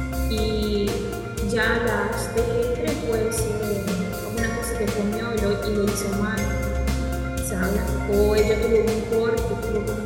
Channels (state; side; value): identical; both; correlation 1.00